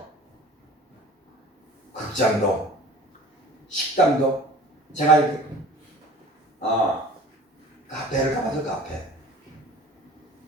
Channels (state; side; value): normal; both; correlation 0.43